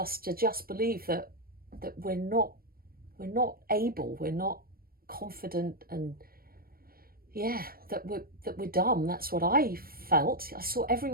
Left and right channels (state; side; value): late; left; 0.43 ms